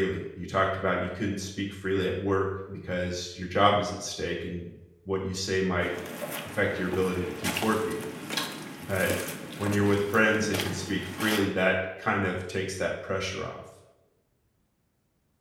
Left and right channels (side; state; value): both; identical; correlation 1.00